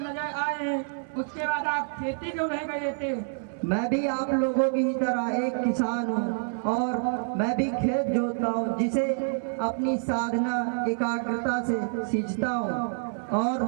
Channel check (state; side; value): silent; left; digital silence